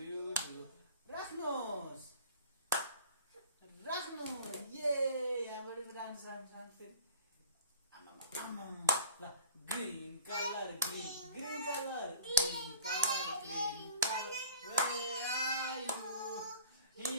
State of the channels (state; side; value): inverted; both; correlation -0.45